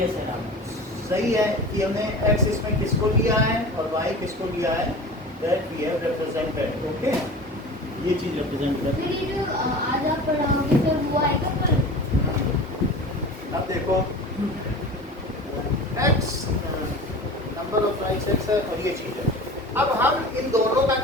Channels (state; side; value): normal; both; correlation 0.36